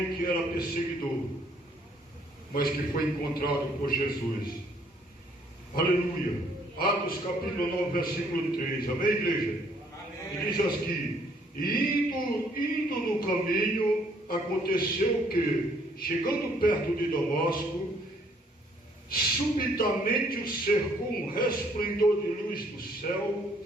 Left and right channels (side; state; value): both; normal; correlation 0.64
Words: que era perseguidor, mas que foi encontrado por Jesus. Aleluia. Atos capítulo 9, versículo 3. Amém, igreja? Amém. E diz assim: indo no caminho, aconteceu que, chegando perto de Damasco, subitamente o cercou um resplendor de luz do céu,